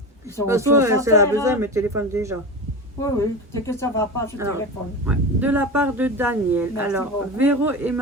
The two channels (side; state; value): both; normal; correlation 0.25